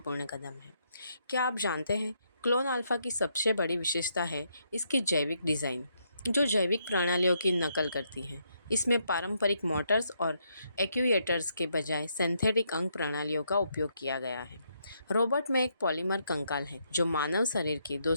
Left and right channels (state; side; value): inverted; both; correlation -0.76